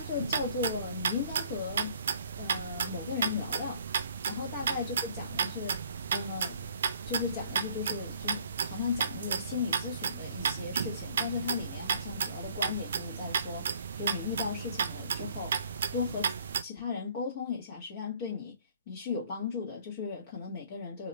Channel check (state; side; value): inverted; both; correlation -0.59